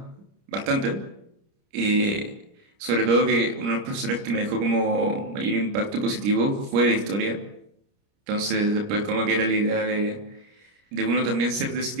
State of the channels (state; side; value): late; left; 30 ms